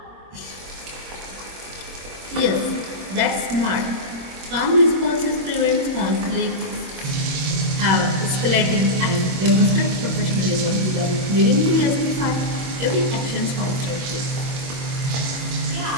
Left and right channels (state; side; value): late; left; 22 ms